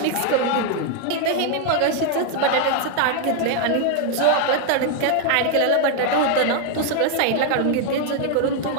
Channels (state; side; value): different; both; correlation 0.00